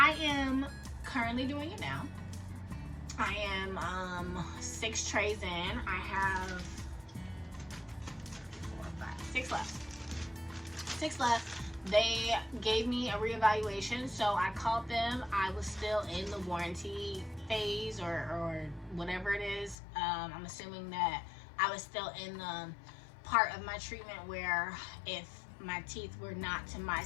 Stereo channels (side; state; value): right; drops out; at 19.8 s